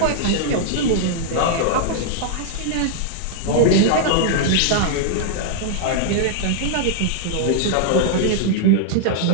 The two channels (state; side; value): different; both; correlation -0.01